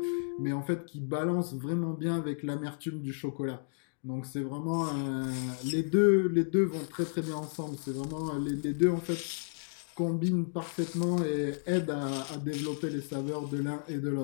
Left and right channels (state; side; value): silent; right; digital silence